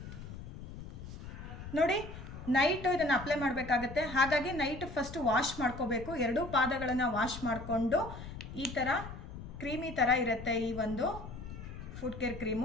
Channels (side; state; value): left; noise; rumble, 11 dB below the sound